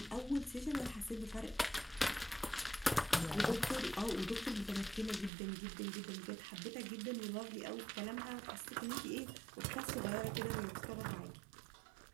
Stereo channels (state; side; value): drops out; left; at 5.3 s